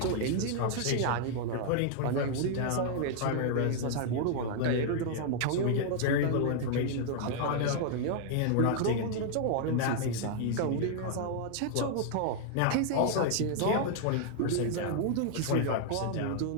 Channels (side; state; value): both; different; correlation 0.00